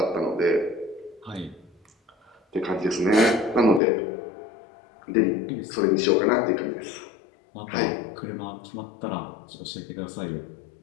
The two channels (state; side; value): drops out; right; at 3.8 s